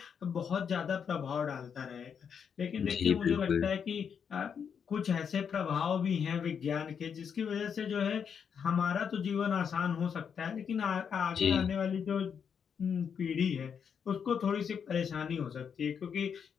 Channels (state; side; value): quieter; right; 7.1 dB